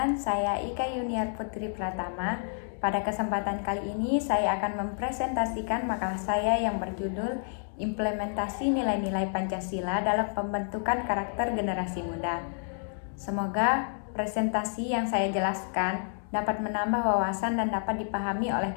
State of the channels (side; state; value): right; silent; digital silence